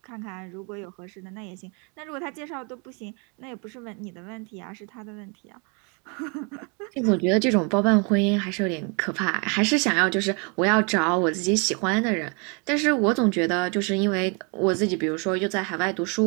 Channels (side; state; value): left; quieter; 34.3 dB